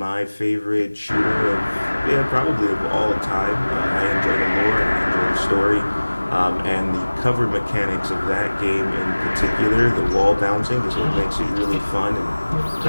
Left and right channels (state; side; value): inverted; both; correlation -1.00